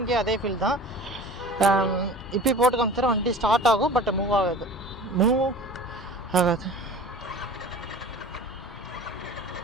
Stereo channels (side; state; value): both; normal; correlation 0.40